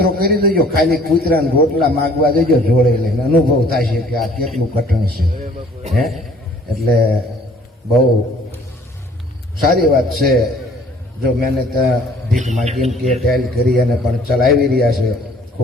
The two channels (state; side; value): normal; both; correlation 0.55